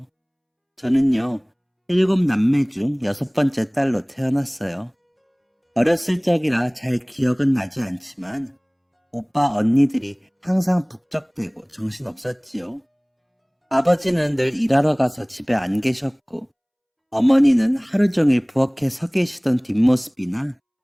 저는요, 7남매 중 6번째 딸로 태어났어요. 어렸을 적이라 잘 기억은 나지 않지만 오빠 언니들이 항상 북적대고 정신없었지요. 아버지는 늘 일하러 가서 집에 안 계셨고 어머니는 하루 종일 부엌에 서 계시던 뒷모습이나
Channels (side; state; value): both; identical; correlation 1.00